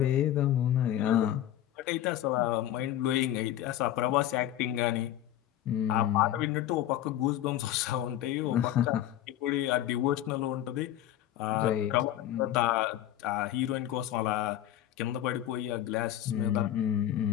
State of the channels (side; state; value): right; quieter; 12.3 dB